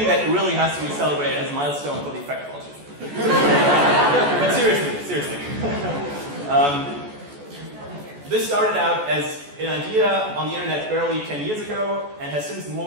that really has to be celebrated as a milestone for the effective altruism. But seriously. This started out as an idea on the internet barely 10 years ago and has since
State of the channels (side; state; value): left; late; 14 ms